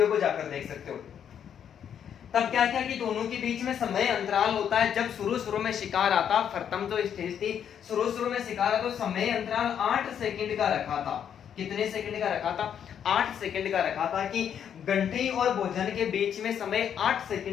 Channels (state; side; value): quieter; right; 8.7 dB